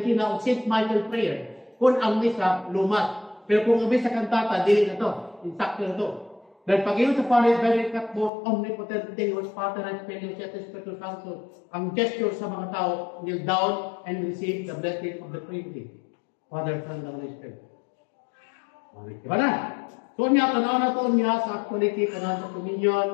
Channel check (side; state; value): right; drops out; at 8.3 s